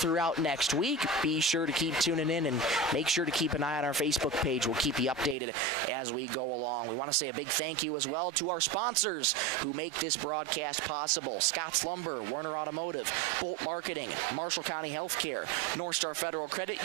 next week. Be sure to keep tuning in and make sure to keep an eye on our Facebook page. We'll keep you updated as we go along. We want to say a big thank you as well to our sponsors who make this broadcast possible. Scott's Watts Lumber, Werner Automotive, Bolt Marketing, Marshall County Healthcare, North Star Federal Credit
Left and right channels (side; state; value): left; drops out; at 5.4 s